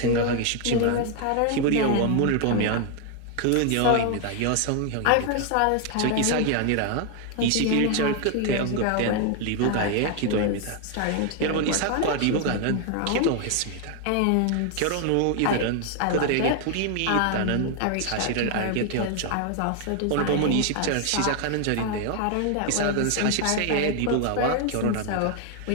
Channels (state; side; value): different; both; correlation 0.00